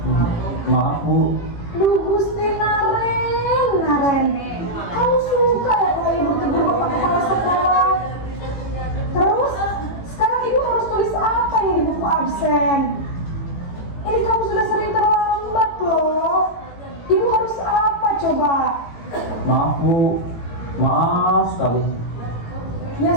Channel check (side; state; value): right; late; 18 ms